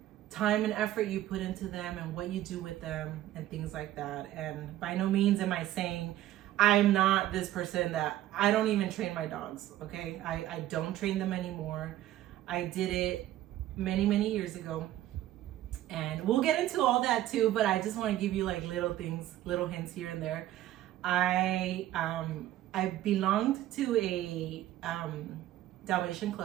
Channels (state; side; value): quieter; left; 13.8 dB